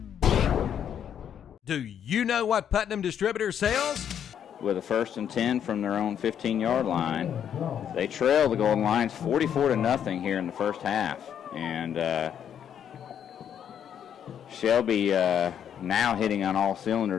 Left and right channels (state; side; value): quieter; right; 9.0 dB